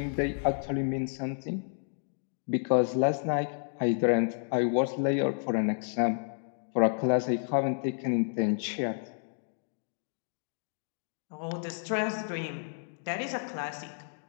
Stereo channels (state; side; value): silent; right; digital silence